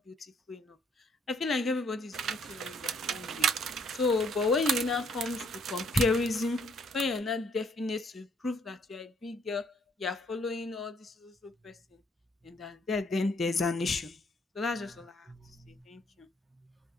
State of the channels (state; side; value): normal; both; correlation 0.66